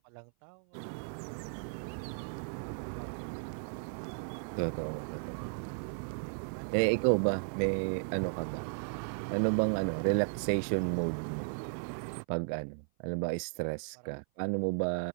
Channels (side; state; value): left; silent; 54 dB below the other